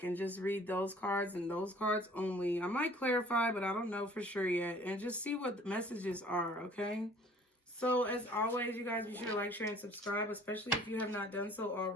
and just read those cards and those cards only. I might clarify, but I don't know for sure yet. And just see what the messages are, okay? So, as always, you guys, be sure to like, share, and subscribe, especially if you have not done so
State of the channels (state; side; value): normal; both; correlation 0.53